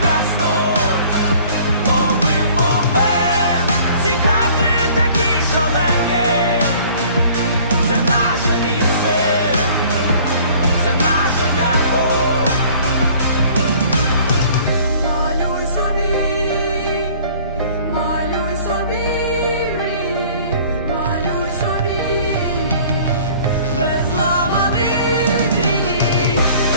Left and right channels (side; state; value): both; inverted; correlation -0.52